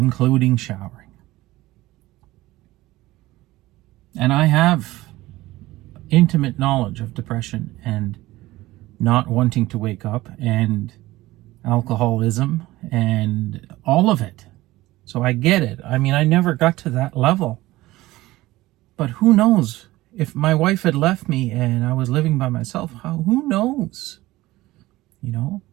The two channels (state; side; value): quieter; left; 17.9 dB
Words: showering. And I have intimate knowledge of depression and not wanting to wake up and alcoholism and all of it. So I get it. I mean, I never got to that level. But who knows? If my wife had left me and I was living by myself, who knows?